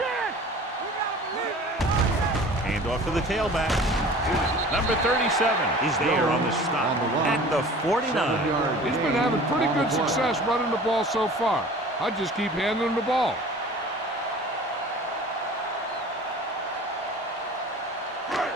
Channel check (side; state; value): both; normal; correlation 0.43